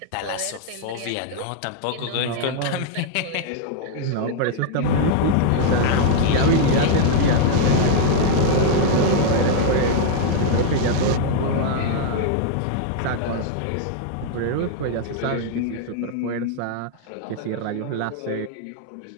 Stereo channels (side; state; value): both; different; correlation 0.00